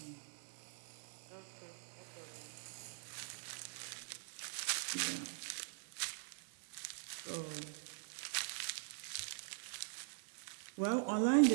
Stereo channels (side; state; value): left; silent; digital silence